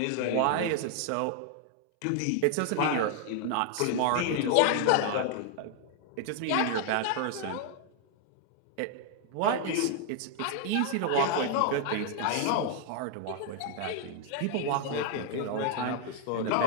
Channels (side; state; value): both; different; correlation 0.00